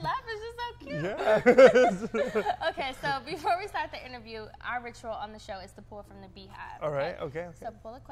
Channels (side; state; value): both; identical; correlation 1.00